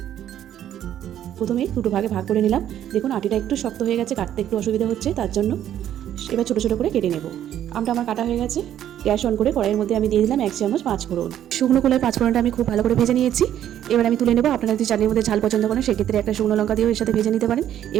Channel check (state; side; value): quieter; left; 11.0 dB